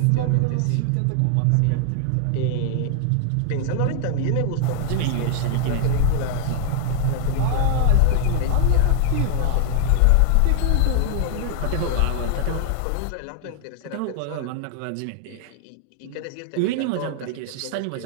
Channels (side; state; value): both; different; correlation 0.00